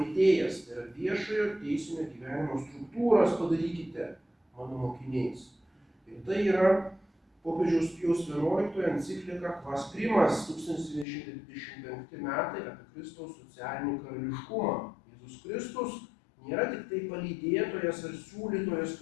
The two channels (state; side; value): drops out; right; at 11.1 s